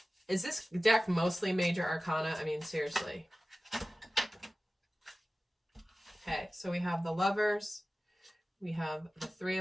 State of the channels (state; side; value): normal; both; correlation 0.96